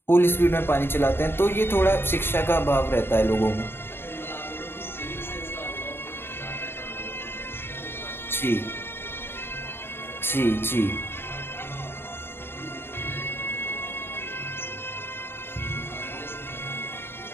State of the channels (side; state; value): right; late; 0.11 ms